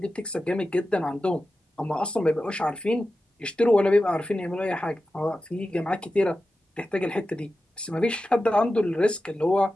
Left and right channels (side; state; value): both; normal; correlation 0.93